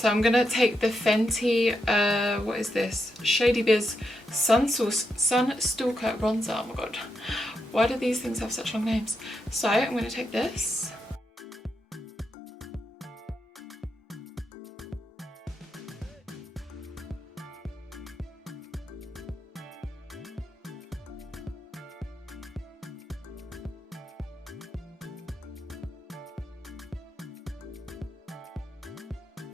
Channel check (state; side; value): normal; both; correlation 0.83